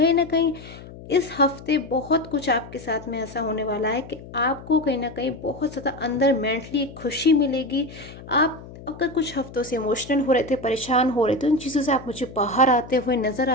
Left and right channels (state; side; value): noise; left; hum, 16 dB below the sound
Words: ना कहीं इस हफ्ते बहुत कुछ आपके साथ में ऐसा होने वाला है कि आपको कहीं ना कहीं बहुत ज़्यादा अंदर मेंटली खुशी मिलेगी। आप अगर कुछ हफ्तों से इमोशनल हो रहे थे, परेशान हो रहे थे, उन चीज़ों से आप मुझे बाहर आते हुए नज़र